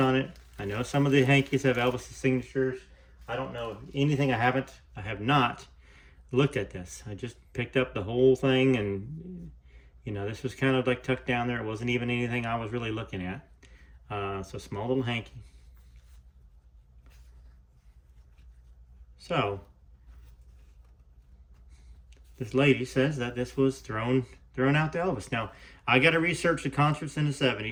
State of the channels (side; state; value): both; identical; correlation 1.00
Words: it. I know some of the hankies have Elvis's signatures. I don't know anything. I have not looked at this. I just picked up the whole thing, and you know, this was kind of like tucked down there. It wasn't even anything I was really looking at. So small little hanky. So this lady says that this was thrown out to Elvis. Now, I got to research the concerts in the